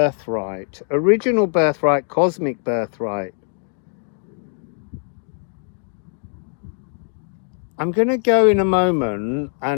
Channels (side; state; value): right; silent; 55 dB below the other